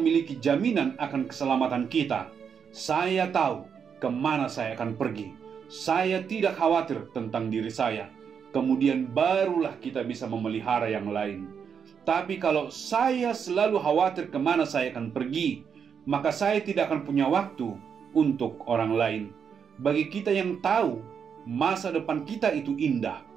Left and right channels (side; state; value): left; quieter; 7.0 dB